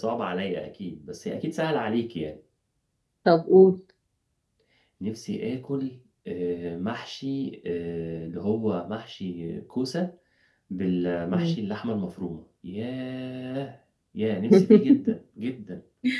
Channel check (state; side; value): identical; both; correlation 1.00